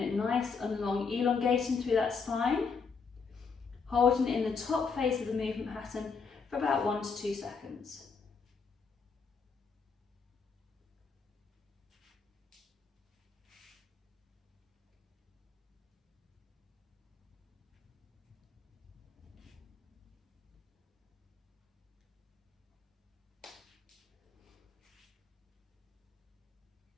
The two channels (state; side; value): quieter; right; 5.3 dB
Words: nice and long, elongating through that spine, holding it in the top phase of the movement pattern for about 1 to 2 seconds.